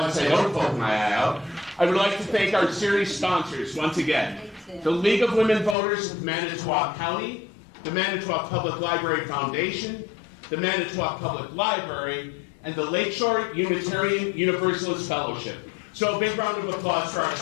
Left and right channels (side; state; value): right; drops out; at 5.8 s